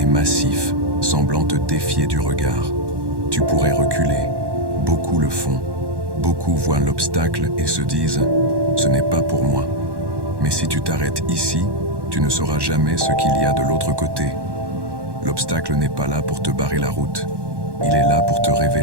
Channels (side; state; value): left; late; 1.1 ms